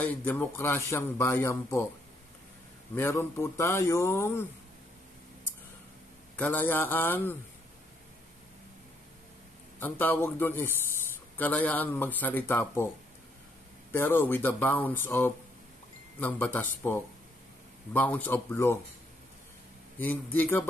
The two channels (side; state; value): both; normal; correlation 0.72